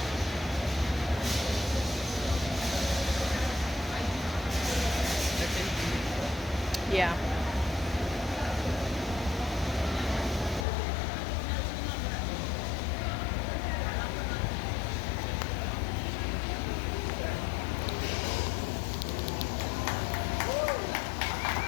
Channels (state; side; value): drops out; right; at 10.7 s